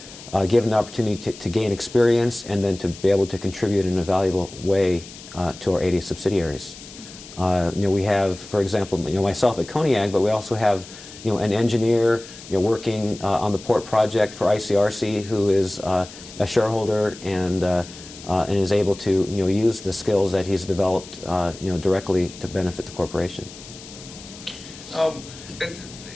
given the opportunity to gain experience and then to be able to contribute in a valuable way to our 8A subsidiaries. We have, for example, myself at Koniag, but we also have an engineer working on the port project for ICRC who is a shareholder and is able to use the skills that he's developed directly to benefit the corporation.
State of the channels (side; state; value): left; noise; hiss, 17 dB below the sound